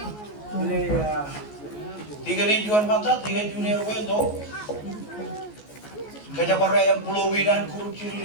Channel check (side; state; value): right; late; 14 ms